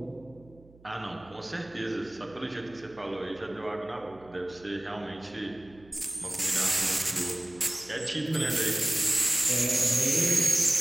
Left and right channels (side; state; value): right; noise; hum, 25 dB below the sound